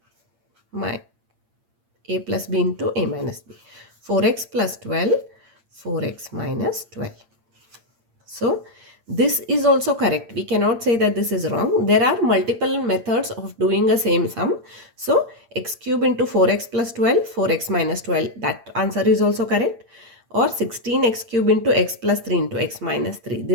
my a plus b into a minus b. 4x plus 12, 4x minus 12. So this is also correct. We cannot say that this is wrong. There are multiple methods of doing a same sum. So x cube into 4x plus 12, 4x minus 12, that answer is also correct. Or 16x cube into x plus 3 into x minus 3.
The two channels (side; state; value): left; late; 8.7 ms